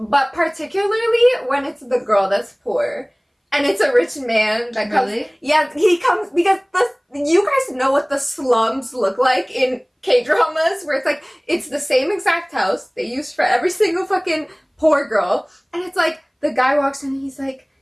particularly when it's the girl that's poor. And it's a rich man that comes. Really? Yeah, he comes because you guys know what the slums look like in K-dramas, where it's like, it's the same exact house they use for every single fucking poor girl. And it's like, the guy walks in and he's like,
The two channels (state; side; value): identical; both; correlation 1.00